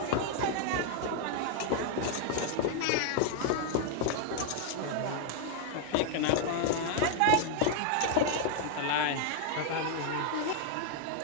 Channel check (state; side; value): different; both; correlation 0.00